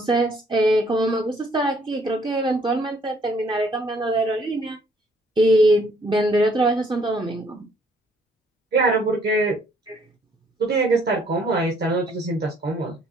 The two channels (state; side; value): normal; both; correlation 0.64